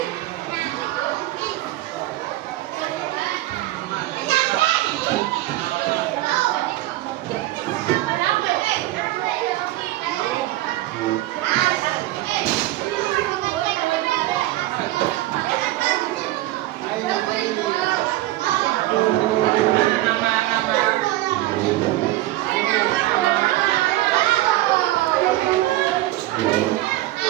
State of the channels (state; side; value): quieter; left; 16.5 dB